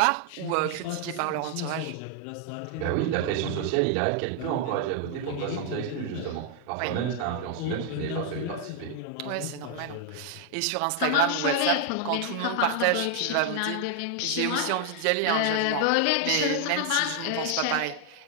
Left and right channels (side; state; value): both; different; correlation 0.00